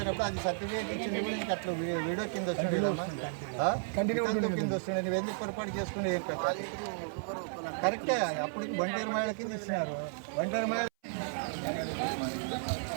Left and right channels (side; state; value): left; silent; 55 dB below the other